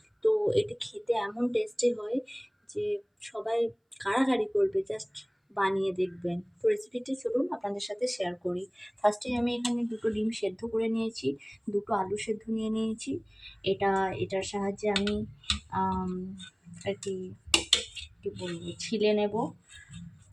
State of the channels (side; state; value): both; identical; correlation 1.00